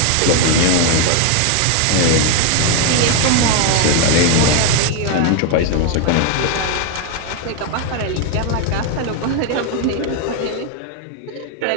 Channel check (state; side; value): different; both; correlation 0.01